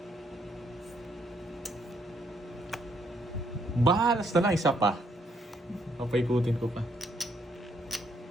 Bahalas na lang, isa pa. Papaikutin ko pa.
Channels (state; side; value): normal; both; correlation 0.71